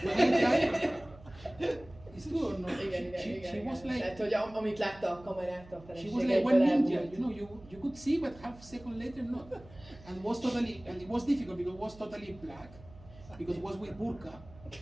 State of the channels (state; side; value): noise; right; hum, 20 dB below the sound